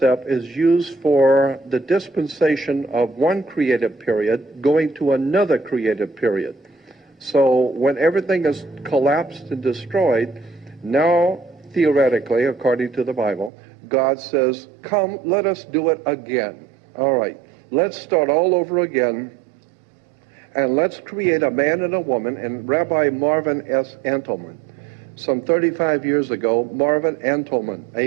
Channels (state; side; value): drops out; left; at 13.5 s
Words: is used for the dispensation of one creative period going to another creative period. So when everything is collapsed and destroyed, now theoretically, according to the Bible, God says, come, let us do it again. All right, let's start all over again, and let's create a man and a woman. And Rabbi Marvin S. Antelman, some 35 years ago, Marvin Antelman,